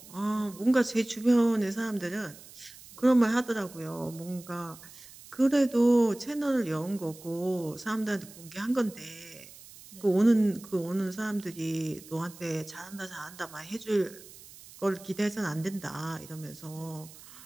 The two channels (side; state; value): right; noise; hiss, 19 dB below the sound